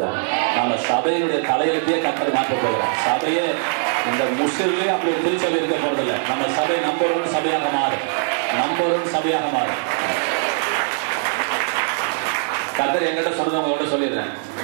நம்ம சபையினுடைய தலையெழுத்தையே கர்த்தர் மாற்ற போகிறார். சபையே இந்த முஸ்லிம்லயே அப்படி ஒரு திருச்சபை இருக்க போறதில்லை. நம்ம சபை நம்பர் 1 சபையாக மாறும், நம்பர் 1 சபையாக மாறும். கர்த்தர் என்கிட்ட சொன்னதை உங்கள்கிட்ட சொல்லிடுறேன்.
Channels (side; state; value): left; silent; 55 dB below the other